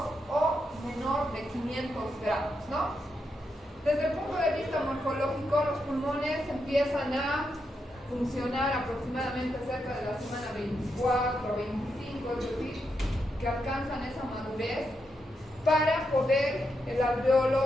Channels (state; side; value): normal; both; correlation 0.83